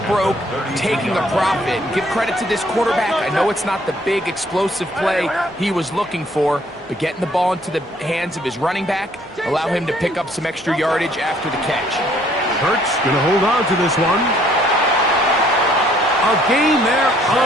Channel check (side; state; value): both; normal; correlation 0.63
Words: broke taking a profit. Give credit to this quarterback. I know it's not the big explosive play he was looking for, but getting the ball into the hands of his running back, allow him to pick up some extra yardage after the catch. Hurts going to hold on to this one. A gain there